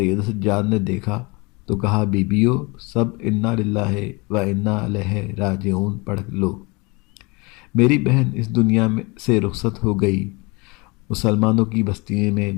سجاد نے دیکھا تو کہا، بیبیو سب انا للہ و انا الیہ راجعون پڑھ لو، میری بہن اس دنیا سے رخصت ہو گئی۔ مسلمانوں کی بستی میں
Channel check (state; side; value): quieter; right; 27.1 dB